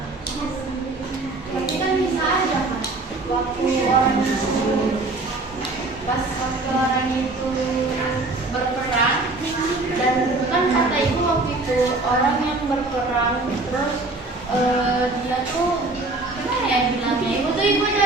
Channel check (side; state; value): left; quieter; 3.1 dB